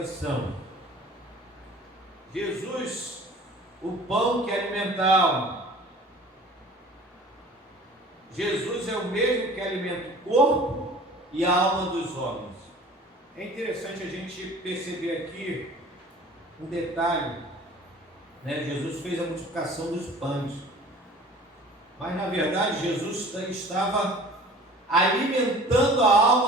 Jesus, o pão que alimenta a alma. Jesus é o mesmo que alimenta o corpo e a alma dos homens. É interessante a gente perceber aqui um detalhe, né? Jesus fez a multiplicação dos pães, mas na verdade Jesus estava alimentando a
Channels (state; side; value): normal; both; correlation 0.46